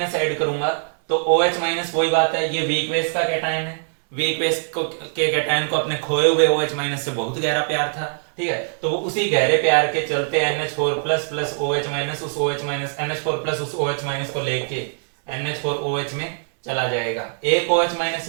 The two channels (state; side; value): silent; left; 64 dB below the other